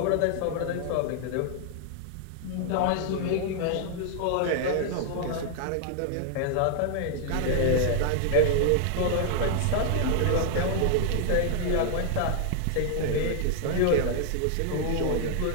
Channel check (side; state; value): both; different; correlation 0.00